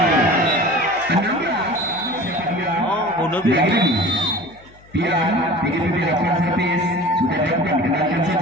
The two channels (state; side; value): noise; left; hum, 26 dB below the sound